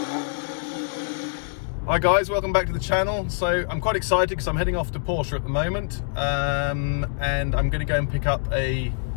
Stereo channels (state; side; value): silent; right; digital silence